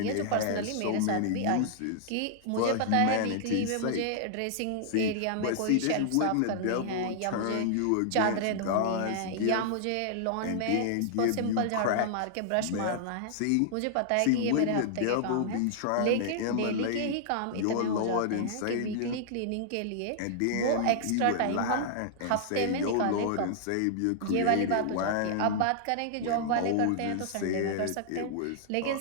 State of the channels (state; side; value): different; both; correlation -0.01